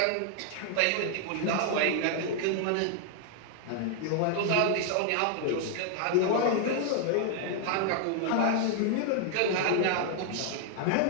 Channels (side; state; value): both; different; correlation 0.00